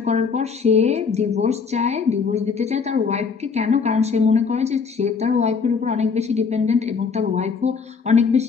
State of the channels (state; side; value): quieter; right; 5.5 dB